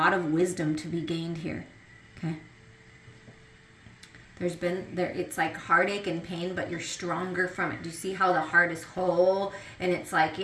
of wisdom to be gained here. Okay? It's like heartache and pain, but you're stronger from it. Do you see how the heart is whole? And it's like,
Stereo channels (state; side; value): identical; both; correlation 1.00